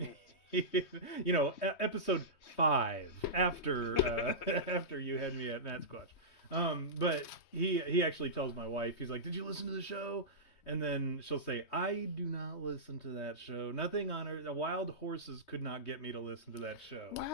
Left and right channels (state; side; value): late; right; 3.2 ms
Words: Episode 5 after you had me at Matt Squatch. But he actually tells my wife, he's like, "Did you listen to the show?" And then she'll say, "I do not listen to that show. Nothing on earth. The Wild Horses could not get me to listen to that show."